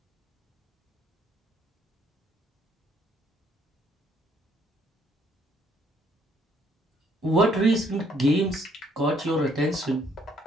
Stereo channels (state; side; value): normal; both; correlation 0.67